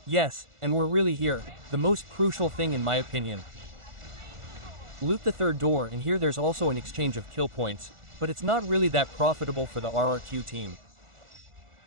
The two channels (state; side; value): late; left; 1.4 ms